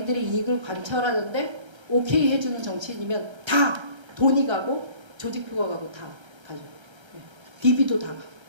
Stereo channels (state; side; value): late; left; 1.3 ms